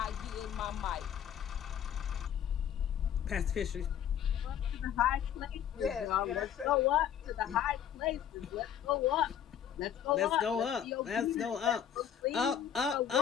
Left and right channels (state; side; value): quieter; right; 9.5 dB